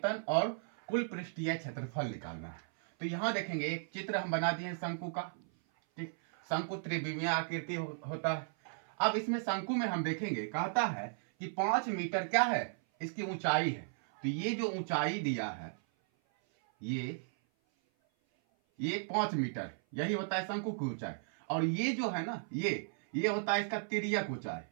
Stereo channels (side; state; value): left; silent; 54 dB below the other